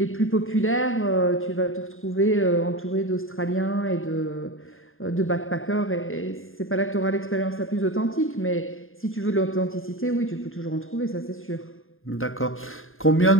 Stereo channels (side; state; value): right; late; 0.60 ms